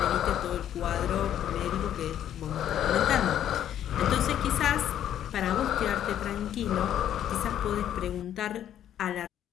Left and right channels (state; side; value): quieter; right; 10.7 dB